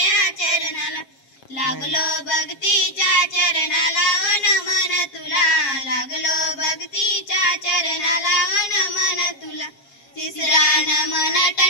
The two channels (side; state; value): right; late; 7.4 ms